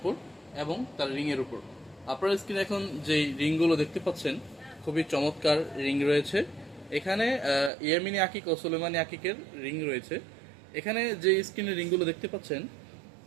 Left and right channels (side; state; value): left; drops out; at 7.7 s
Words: এবং তার রিংয়ের উপর। আপনার স্ক্রিনে এখন যেই রিংগুলো দেখতে পাচ্ছেন, খুবই চমৎকার রিং রয়েছে। এখানে ইয়ামিনী আকিক ও সুলেমানি আকিকের রিং রয়েছে। এখানে যে স্ক্রিনে রিংগুলো দেখতে পাচ্ছেন,